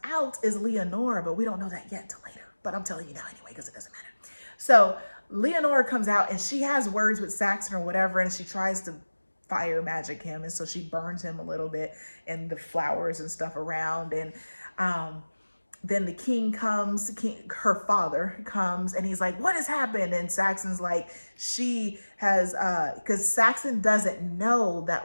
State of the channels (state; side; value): inverted; both; correlation -1.00